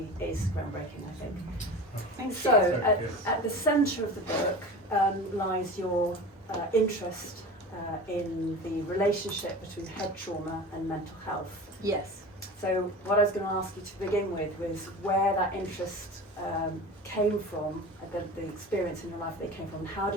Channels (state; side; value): normal; both; correlation 0.34